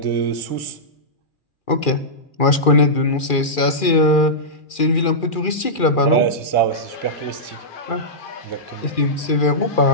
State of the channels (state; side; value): late; right; 2.4 ms